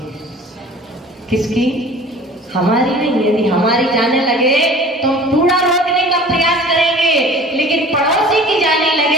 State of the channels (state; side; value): normal; both; correlation 0.45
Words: किसकी, हमारी नहीं। यदि हमारी जाने लगे तो हम कूड़ा रोकने का प्रयास करेंगे, लेकिन पड़ोसी की जाने